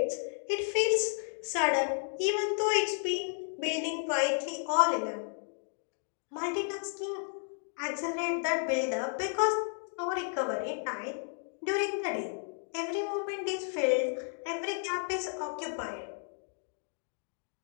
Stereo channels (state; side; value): silent; right; 56 dB below the other